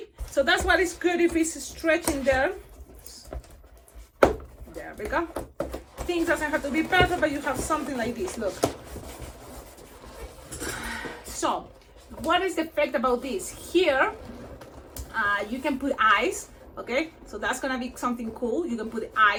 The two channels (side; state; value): both; identical; correlation 1.00